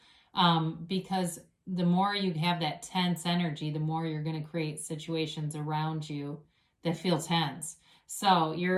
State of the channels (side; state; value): both; identical; correlation 1.00